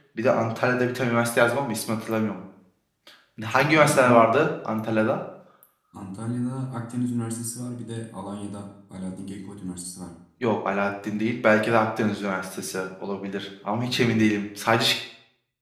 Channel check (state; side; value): identical; both; correlation 1.00